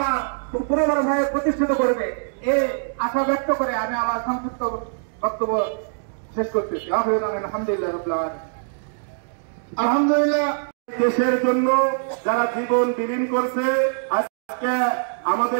পুনরায় প্রতিষ্ঠিত করবে, এই আশা ব্যক্ত করে আমি আমার সংক্ষিপ্ত বক্তব্য শেষ করতেছি। আলহামদুলিল্লাহ রাব্বিল আলামিন। আলহামদুলিল্লাহ, দেশের জন্য যারা জীবন বিলীন করছে, আজকে আমাদের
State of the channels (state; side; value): silent; left; digital silence